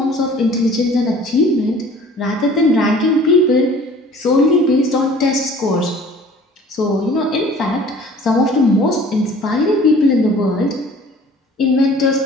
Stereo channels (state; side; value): normal; both; correlation 0.49